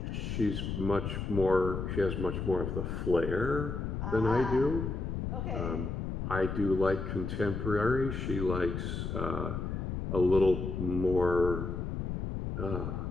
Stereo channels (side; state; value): left; noise; rumble, 3 dB below the sound